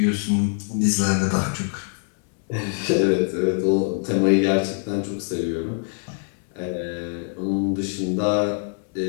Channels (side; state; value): right; silent; 57 dB below the other